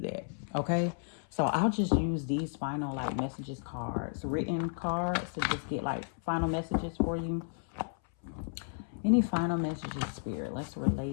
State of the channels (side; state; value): right; silent; 56 dB below the other